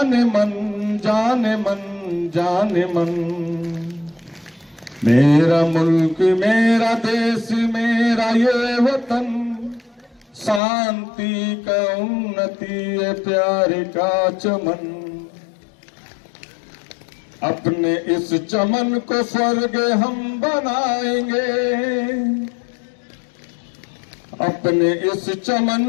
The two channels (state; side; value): drops out; right; at 10.6 s